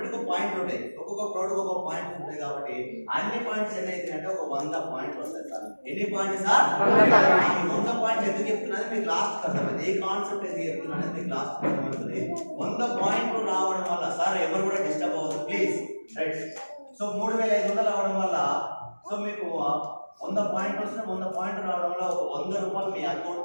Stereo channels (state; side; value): inverted; both; correlation -1.00